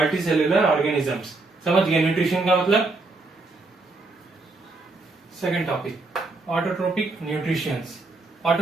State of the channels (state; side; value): quieter; left; 3.4 dB